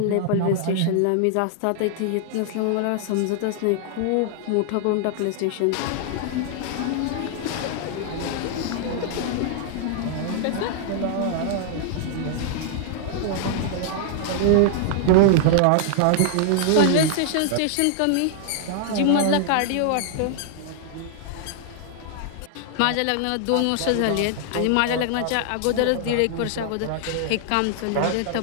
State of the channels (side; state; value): both; different; correlation 0.00